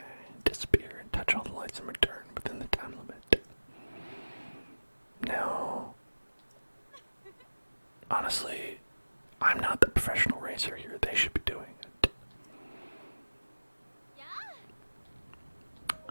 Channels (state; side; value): inverted; both; correlation -1.00